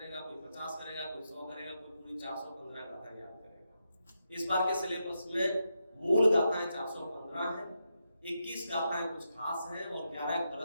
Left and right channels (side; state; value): both; inverted; correlation -0.85